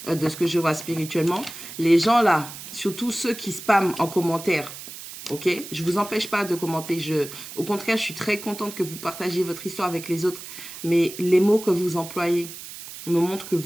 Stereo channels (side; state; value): right; noise; hiss, 12 dB below the sound